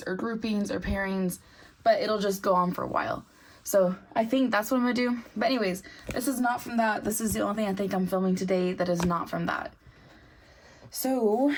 or groupings or pairings, but it'll just go on for a while. So I think that's what I'm gonna do. But anyways, this is not from that. This is the only thing I think I'm filming today that is not from that. So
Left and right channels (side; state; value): both; identical; correlation 1.00